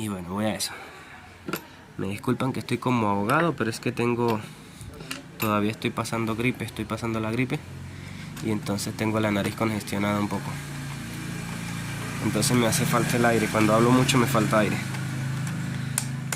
bueno, voy a eso. Me disculpan que estoy como ahogado, pero es que todavía estoy pasando la gripe, y entonces tengo la nariz congestionada un poco. Entonces me hace falta el aire, cuando hablo mucho me falta aire.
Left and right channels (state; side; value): identical; both; correlation 1.00